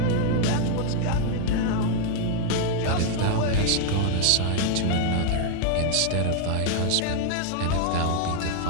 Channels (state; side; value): different; both; correlation 0.00